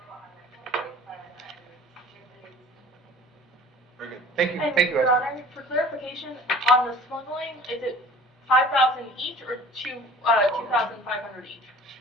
a la corte para el siguiente. Very good. Thank you, And thank you, Your Esther. Honor, for clarification, on the smuggling, is it 5,000 each or 2,500 each?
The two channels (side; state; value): both; normal; correlation 0.46